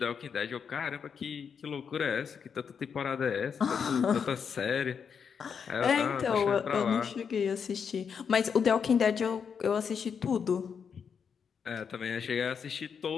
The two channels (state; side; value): quieter; right; 6.7 dB